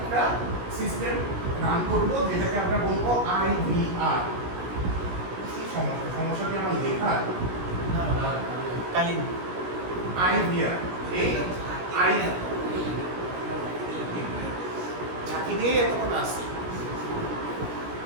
সিস্টেম রান করবো, যেটাকে আমরা বলবো IVR। কি সমস্যা? সমস্যা কি আমার লেখা? কালীন IVR, এই ঝাঁকি দিয়ে এতক্ষণ আসি।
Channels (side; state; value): left; late; 17 ms